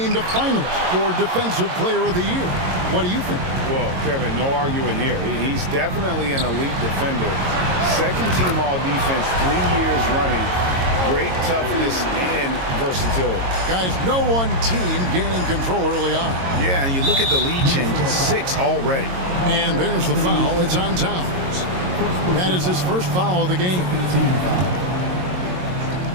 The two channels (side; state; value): left; late; 22 ms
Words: a finalist for Defensive Player of the Year. What do you think? Well, Kevin, no arguing here. He's definitely an elite defender. Second team all-defense 3 years running. Great toughness and versatility. Guys, no one team gaining control early on. Yeah, and you look at the lead changes, 6 already. And there's the foul. It's on Towns. That is his first foul of the game.